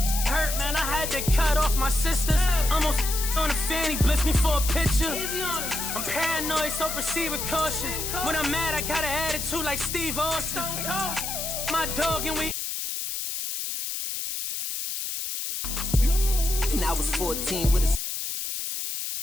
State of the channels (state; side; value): noise; left; hiss, 4 dB below the sound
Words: Hurt, man, I had to cut off my sisters. Almost on the fanny, blitz me for a picture. I'm paranoid, so proceed with caution. When I'm mad, I got an attitude like Steve Austin. My dog and we. And I was 14 with a